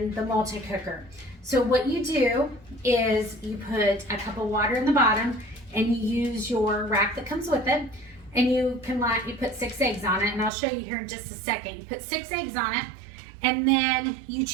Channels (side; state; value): left; drops out; at 10.5 s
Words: the multi-cooker. So what you do is you put a cup of water in the bottom and you use your rack that comes with it, and you put 6 eggs on it, and I'll show you here in just a second. You put 6 eggs on it, and then you